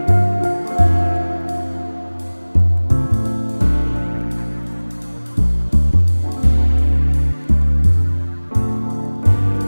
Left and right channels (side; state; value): both; inverted; correlation -1.00